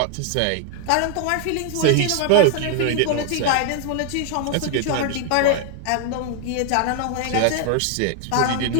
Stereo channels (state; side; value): different; both; correlation 0.00